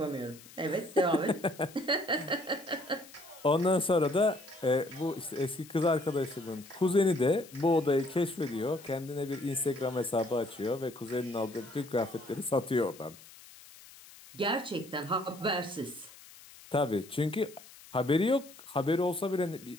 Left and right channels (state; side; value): noise; left; hiss, 20 dB below the sound